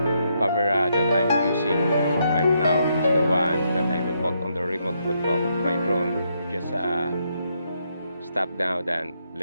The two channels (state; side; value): inverted; both; correlation -0.77